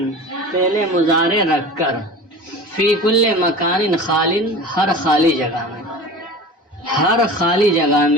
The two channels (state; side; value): normal; both; correlation 0.36